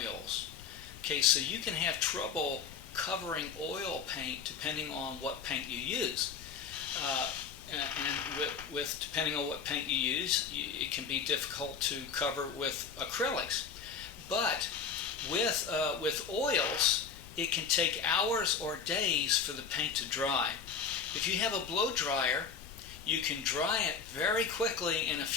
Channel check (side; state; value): right; quieter; 6.2 dB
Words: Okay, so you can have trouble covering oil paint depending on what paint you use. And with depending on what paint you use, it can be difficult to cover with acrylics. But with oils, it can take hours or days for the paint to dry. If you have a blow dryer, you can dry it very quickly in a